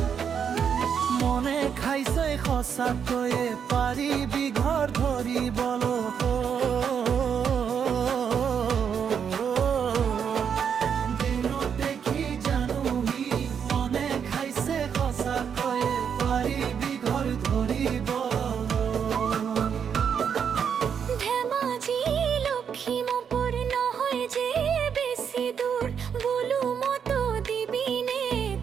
মনে খাইছে সঁচাকৈয়ে পাৰিবি ঘৰ ধৰিবলৈ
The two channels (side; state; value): left; quieter; 7.4 dB